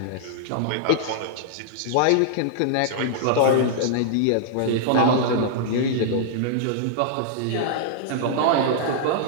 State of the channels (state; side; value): different; both; correlation -0.01